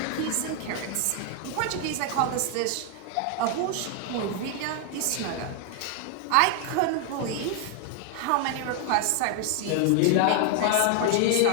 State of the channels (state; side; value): different; both; correlation 0.00